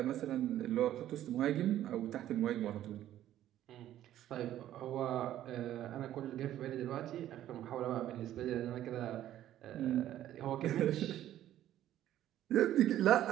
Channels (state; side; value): quieter; left; 12.5 dB